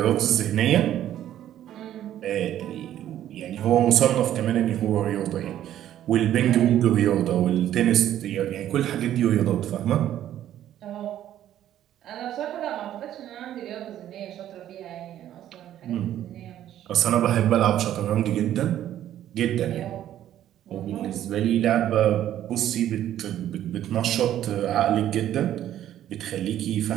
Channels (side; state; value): left; quieter; 11.8 dB